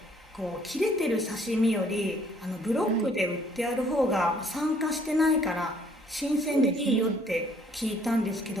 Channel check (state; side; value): normal; both; correlation 0.62